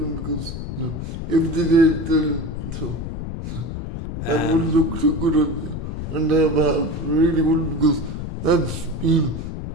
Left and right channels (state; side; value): noise; left; rumble, 6 dB below the sound